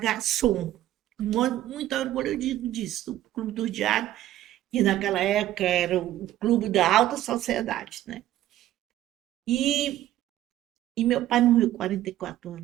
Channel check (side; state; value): left; quieter; 13.6 dB